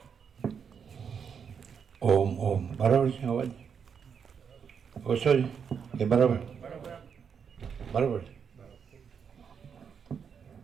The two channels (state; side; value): quieter; left; 6.9 dB